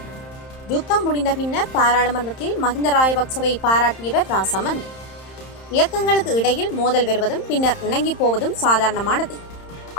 யுத்தம் முடிந்த பின்னர் பாராளுமன்றத்தில் மஹிந்த ராஜபக்சவை பாராட்டியவர் ராசமந்த். இயக்கங்களுக்கு இடையில் மோதல் வருவதும் பின்னர் இணங்கி போவதும் சாதாரணமானது.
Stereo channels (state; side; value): late; right; 31 ms